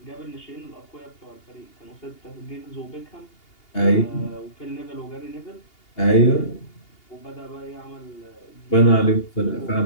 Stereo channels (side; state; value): right; late; 2.8 ms